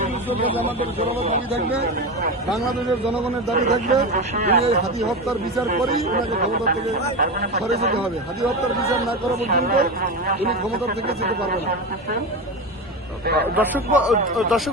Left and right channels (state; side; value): normal; both; correlation 0.21